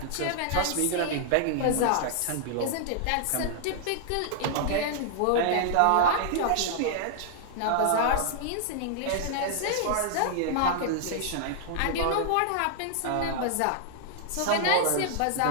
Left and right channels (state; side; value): different; both; correlation -0.01